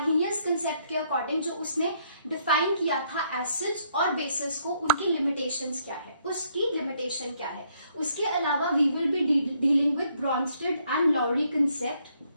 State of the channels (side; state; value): both; inverted; correlation -0.70